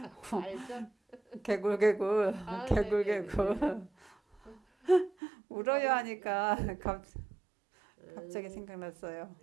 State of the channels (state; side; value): drops out; left; at 5.1 s